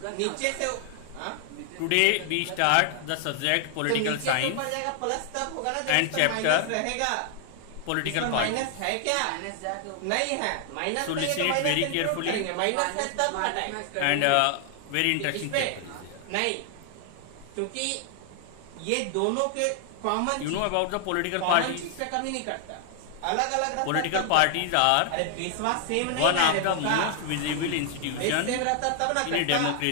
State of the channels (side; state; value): both; different; correlation 0.00